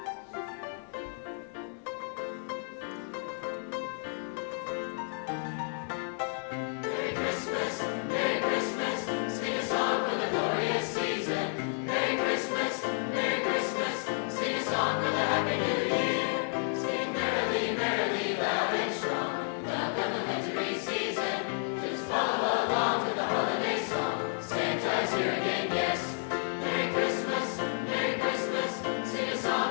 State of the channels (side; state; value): right; silent; 57 dB below the other